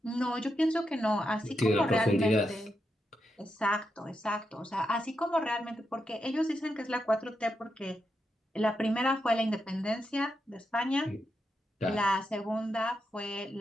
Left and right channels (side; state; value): both; normal; correlation 0.85